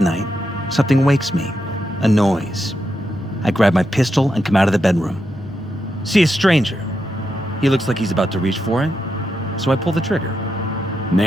something wakes me. A noise. I grab my pistol and come out of the bedroom. See a stranger. He looks like he's about to reach for it, so I pull the trigger.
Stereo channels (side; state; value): both; normal; correlation 0.85